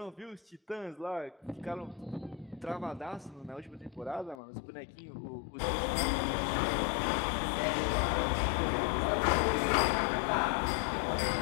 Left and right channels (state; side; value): drops out; right; at 4.4 s